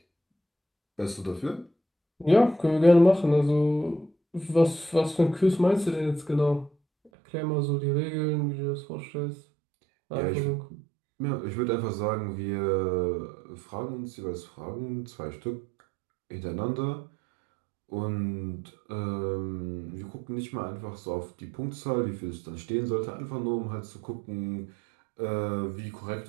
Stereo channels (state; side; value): drops out; left; at 7.1 s